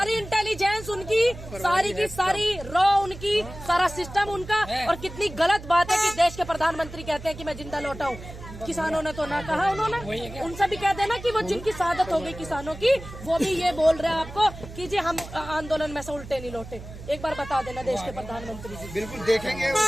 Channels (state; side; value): noise; right; hum, 14 dB below the sound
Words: इंटेलिजेंस उनकी, सारी की सारी रॉ उनकी, सारा सिस्टम उनका। और कितनी गलत बात है कि देश के प्रधानमंत्री कहते हैं कि मैं जिंदा लौटा हूँ। किसानों ने तो ना कहा, उन्होंने उनसे भी कह देना कि वो जिनकी शहादत हो गई किसानों की, वो भी ये बोल रहे हैं आपको कि जी हम आंदोलन में से उल्टे नहीं लौटे। एक बार बता देना देश के प्रधानमंत्री जी। बिल्कुल देखेंगे,